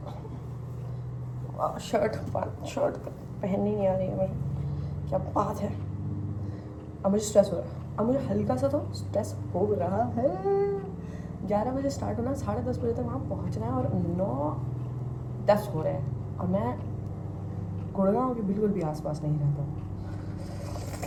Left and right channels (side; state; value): both; identical; correlation 1.00